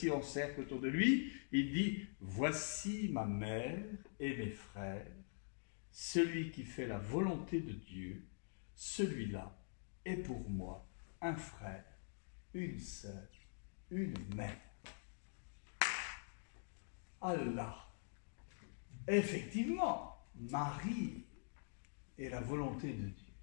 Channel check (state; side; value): silent; right; digital silence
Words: en cercle autour de lui, il dit, voici ma mère et mes frères. Celui qui fait la volonté de Dieu, celui-là est pour moi un frère, une sœur, une mère. Allah. Effectivement, Marie est la volonté de Dieu.